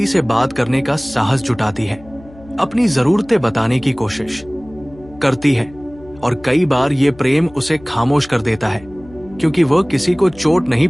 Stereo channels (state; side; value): noise; left; hum, 22 dB below the sound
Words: से बात करने का साहस जुटाती है, अपनी जरूरतें बताने की कोशिश करती है, और कई बार ये प्रेम उसे खामोश कर देता है, क्योंकि वह किसी को चोट नहीं